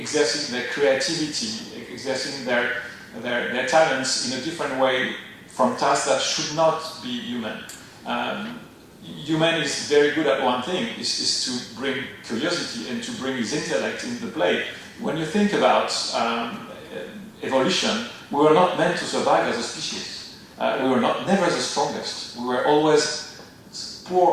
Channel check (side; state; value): both; identical; correlation 1.00